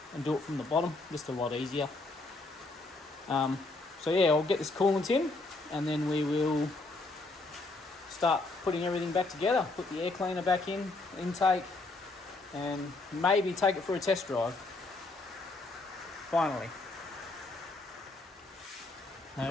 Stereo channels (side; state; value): right; quieter; 3.2 dB